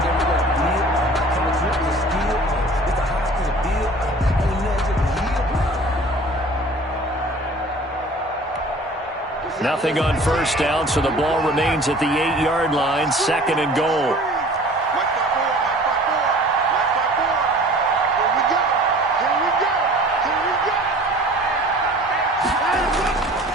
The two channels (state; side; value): normal; both; correlation 0.46